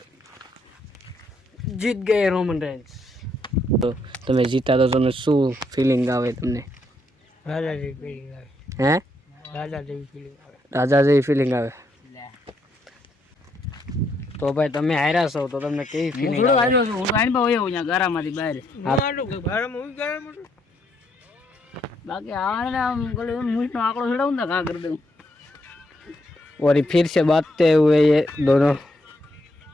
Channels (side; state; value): both; normal; correlation 0.75